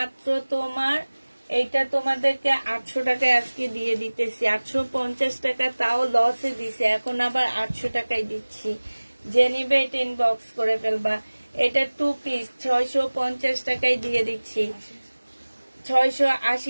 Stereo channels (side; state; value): both; inverted; correlation -1.00